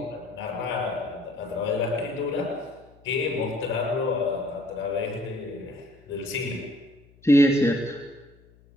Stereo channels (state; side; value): noise; left; hum, 28 dB below the sound